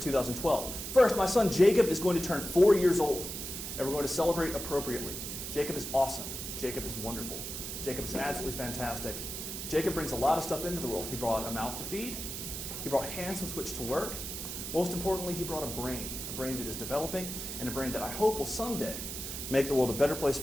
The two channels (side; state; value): right; noise; hiss, 6 dB below the sound